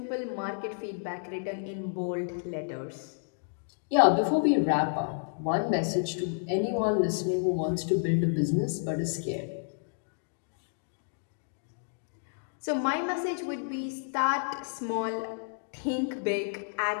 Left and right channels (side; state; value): right; silent; digital silence